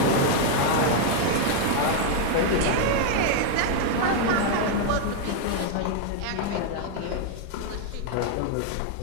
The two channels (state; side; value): different; both; correlation 0.00